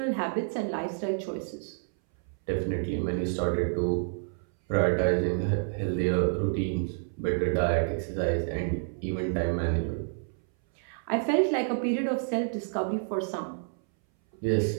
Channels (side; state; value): left; silent; 59 dB below the other